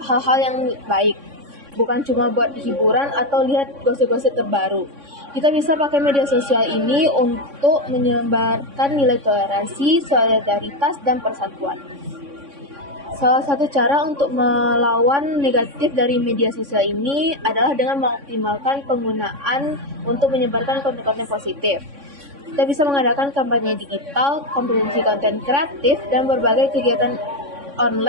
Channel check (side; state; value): left; late; 3.6 ms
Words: hal-hal yang baik, bukan cuma buat hiburan atau lihat gosip-gosip terbaru. Kita bisa pakai media sosial ini untuk menyebarkan nilai toleransi, solidaritas, dan persatuan. Salah satu cara untuk melawan negatif dari media sosial ini adalah dengan mengoptimalkan penggunaan untuk menyebarkan konten-konten positif. Kita bisa mengadakan kampanye digital, kompetisi konten kreatif, dan berbagai kegiatan